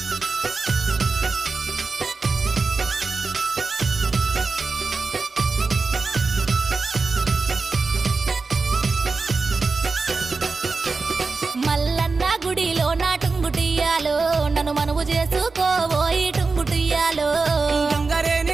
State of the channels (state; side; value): quieter; left; 4.2 dB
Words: మల్లన్న గుడిలో నా టుంగుటియ్యాలో నన్ను మనవు చేసుకోబోయి టుంగుటియ్యాలో